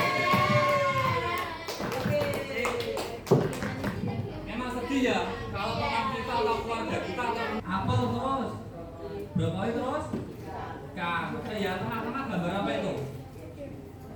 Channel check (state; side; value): identical; both; correlation 1.00